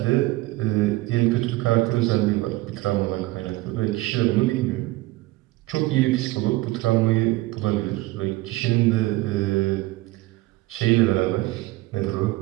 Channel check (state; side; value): quieter; left; 19.3 dB